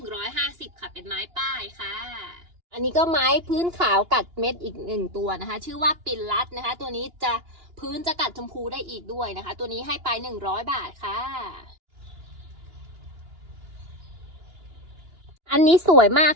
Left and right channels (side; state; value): left; late; 2.9 ms